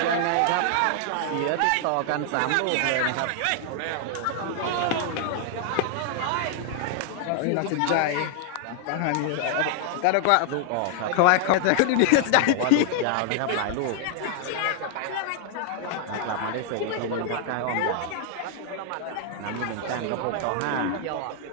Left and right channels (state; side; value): different; both; correlation 0.00